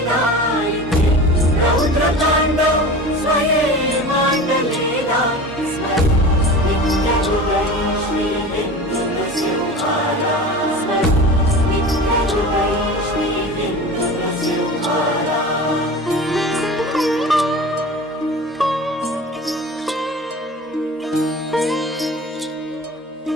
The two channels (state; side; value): normal; both; correlation 0.35